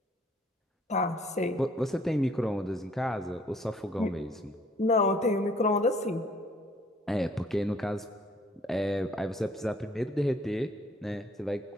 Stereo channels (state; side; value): normal; both; correlation 0.61